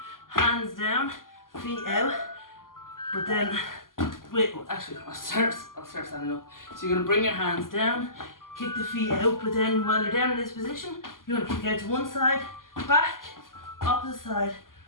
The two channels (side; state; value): right; late; 0.91 ms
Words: hands down, feet out, but then, wait, actually I'll start standing up. So you're going to bring your hands down, kick the feet out, but then while you're down in this position, you're going to kick out to one side, back, opposite side,